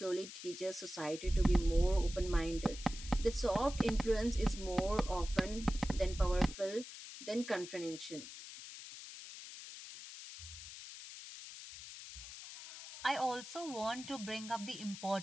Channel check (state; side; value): noise; left; hiss, 12 dB below the sound